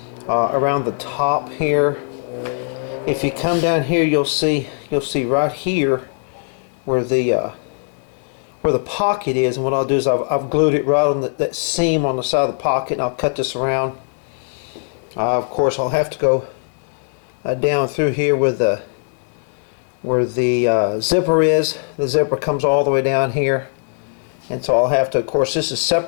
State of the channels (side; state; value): right; silent; 64 dB below the other